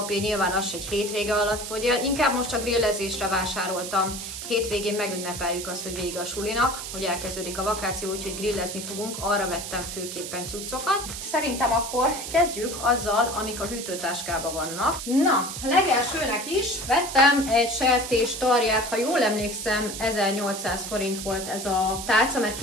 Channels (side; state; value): right; noise; hiss, 7 dB below the sound